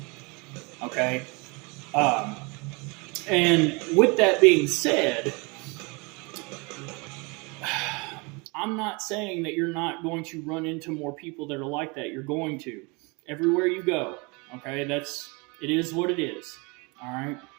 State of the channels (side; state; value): left; quieter; 28.7 dB